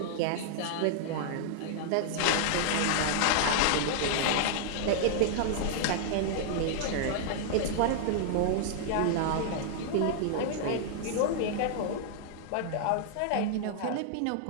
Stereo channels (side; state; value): both; different; correlation -0.01